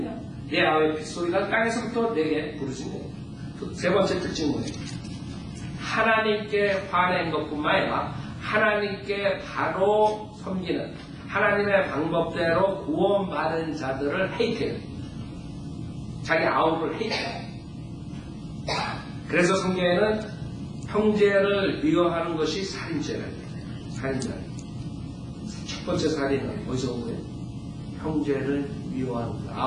내 아우의 핏소리가 땅에서부터 내게 부르짖네. 세 번째 특징은 뭐예요? 하나님께 화낸 것뿐만 아니라 하나님께 바로 섬기는 하나님의 방법대로 구원받은 자들을 헤이트해요. 자기 아우를 헤이트해요. 그래서 성경에는 형제를 미워하는 것이 살인죄라고 해요. 살인죄. 첫 번째 살인은 어디서 온 거예요? 형제를 미워하는 것,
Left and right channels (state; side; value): identical; both; correlation 1.00